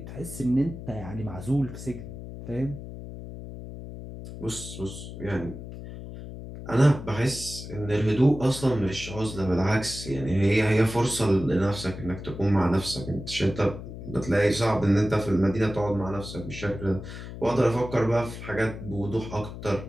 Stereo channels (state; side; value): noise; left; hum, 11 dB below the sound